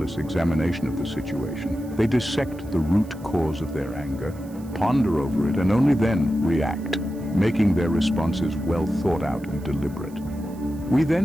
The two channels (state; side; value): noise; right; hiss, 25 dB below the sound